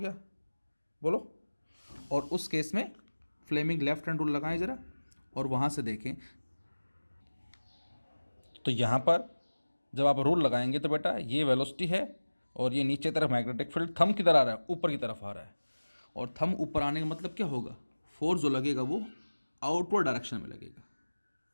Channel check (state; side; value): inverted; both; correlation -1.00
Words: बोलो। और उस केस में फ्लेमिंग लेफ्ट हैंड रूल लगाएं ज़रा और वहाँ से देखें। तो यहाँ पर जब आप रूल लगाएंगे तो बेटा ये वेलोसिटी है और ये नीचे तरफ मैग्नेटिक फील्ड थंब किधर आ रहा है, ऊपर की तरफ आ रहा है। और थंब ऊपर आने का मतलब क्या होगा, फोर्स जो लगेगा वो आउटवर्ड डायरेक्शन में लगेगा।